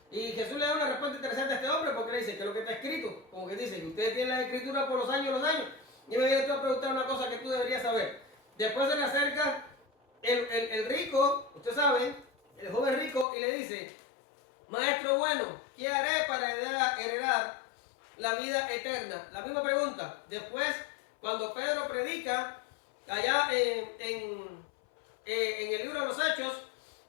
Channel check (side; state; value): right; drops out; at 13.2 s